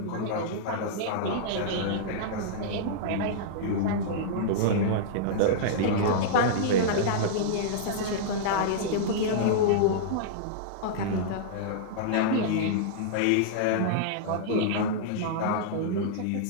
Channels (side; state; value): both; different; correlation -0.02